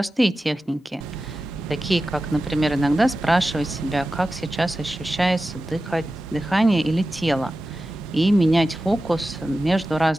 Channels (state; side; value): normal; both; correlation 0.94